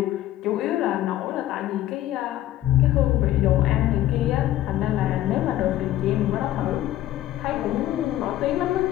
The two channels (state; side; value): quieter; right; 13.9 dB